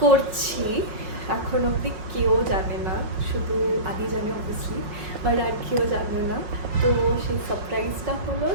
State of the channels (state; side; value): late; left; 5.4 ms